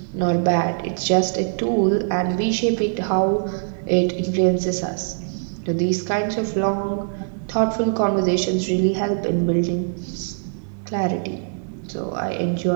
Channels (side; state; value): left; silent; digital silence